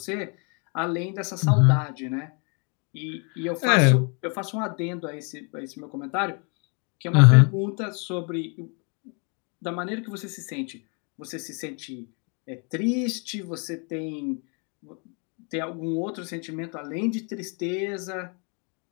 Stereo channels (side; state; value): right; quieter; 36.1 dB